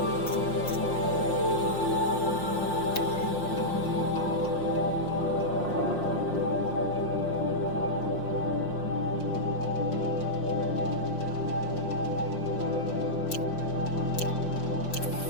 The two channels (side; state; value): right; late; 5.7 ms